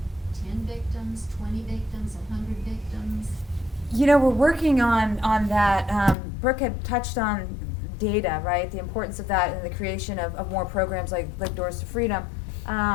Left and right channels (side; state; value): right; drops out; at 6.2 s